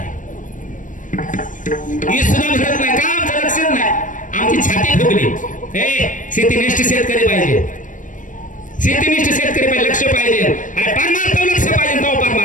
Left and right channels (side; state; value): right; late; 0.38 ms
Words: ही सुद्धा भरत नाही का आमचं लक्षच नाही आमची छाती फुगली शेतीनिष्ठ शेतकरी पाहिजे शेतीनिष्ठ शेतकरी पाहिजे लक्ष पाहिजे अरे पार मारतो लक्ष पाहिजे तेव्हा पार